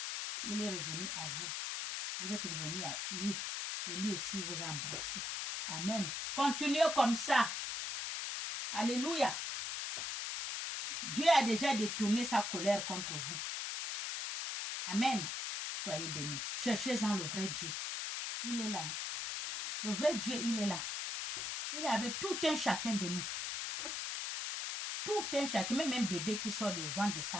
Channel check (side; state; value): left; noise; hiss, 3 dB below the sound